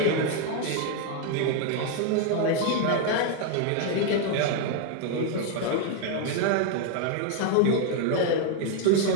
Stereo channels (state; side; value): different; both; correlation 0.01